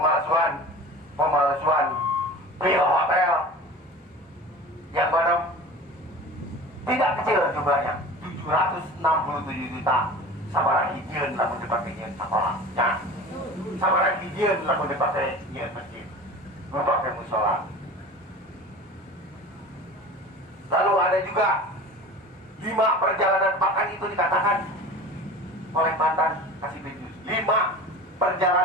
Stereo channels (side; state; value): both; normal; correlation 0.37